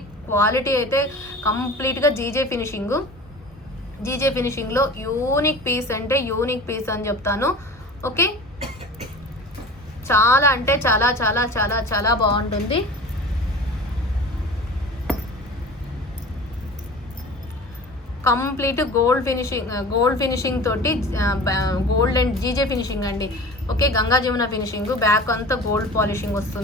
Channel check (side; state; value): both; normal; correlation 0.37